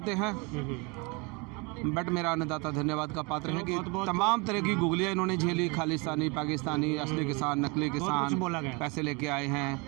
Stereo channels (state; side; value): quieter; left; 28.5 dB